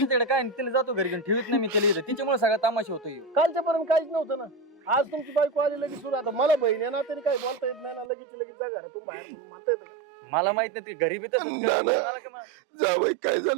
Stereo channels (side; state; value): left; drops out; at 8.1 s